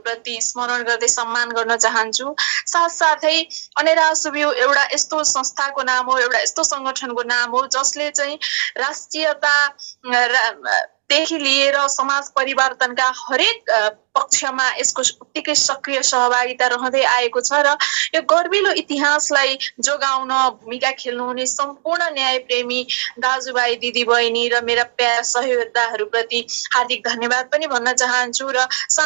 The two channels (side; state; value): left; silent; 67 dB below the other